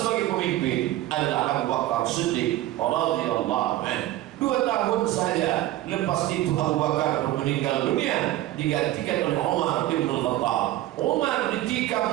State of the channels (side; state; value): left; quieter; 15.2 dB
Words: pemimpin adalah Abu Bakar Siddiq radhiyallahu anhu. 2 tahun saja lepas itu Abu Bakar meninggal dunia, digantikan oleh Umar bin Khattab. Umar